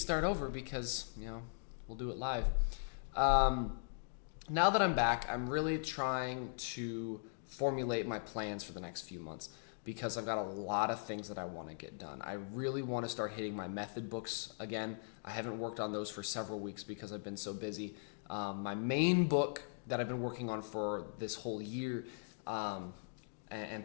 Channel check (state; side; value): silent; right; digital silence